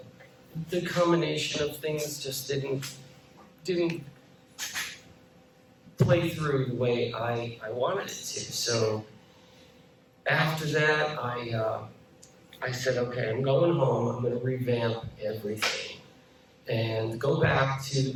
the combination of things just didn't play through the way I wanted it to. So after that, I said, okay, I'm going home. I'm going to revamp everything and go back to the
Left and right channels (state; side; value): identical; both; correlation 1.00